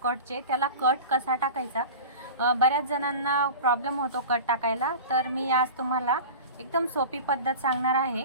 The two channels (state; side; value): inverted; both; correlation -0.33